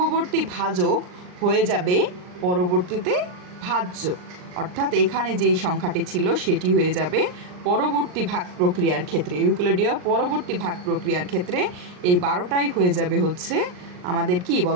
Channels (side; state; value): left; late; 39 ms